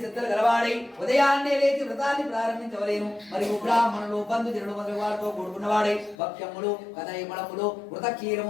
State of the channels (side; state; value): right; drops out; at 6.2 s